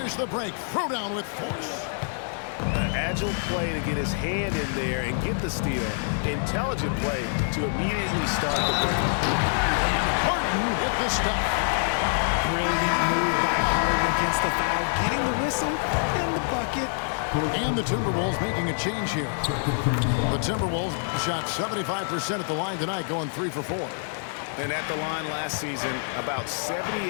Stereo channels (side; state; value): right; silent; digital silence